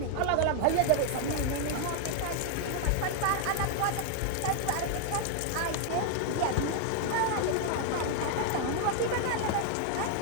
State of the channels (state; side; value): different; both; correlation 0.00